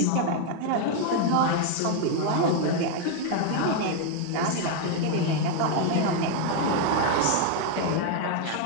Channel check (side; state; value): both; different; correlation 0.00